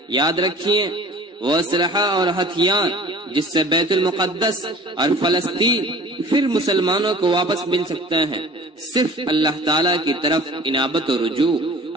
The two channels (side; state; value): both; normal; correlation 0.45